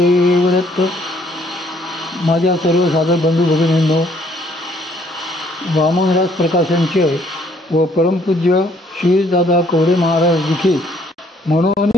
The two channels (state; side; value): normal; both; correlation 0.65